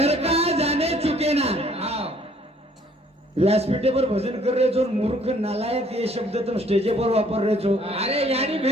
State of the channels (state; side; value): normal; both; correlation 0.60